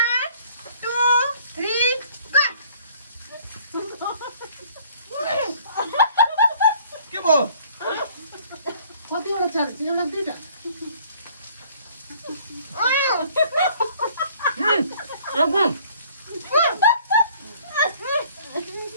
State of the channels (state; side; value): inverted; both; correlation -0.56